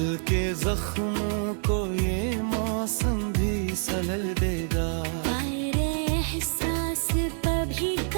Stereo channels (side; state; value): left; silent; 60 dB below the other